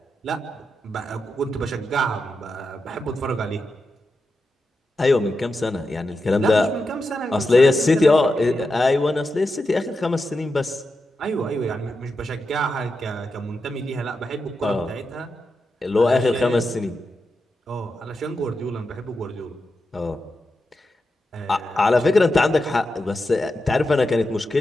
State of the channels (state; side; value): normal; both; correlation 0.88